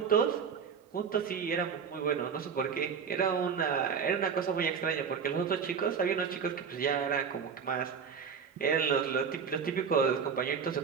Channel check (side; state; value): left; quieter; 6.5 dB